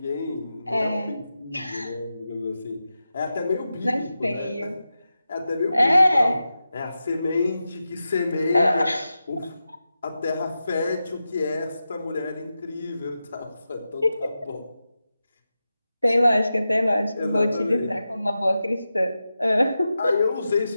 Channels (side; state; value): both; inverted; correlation -0.91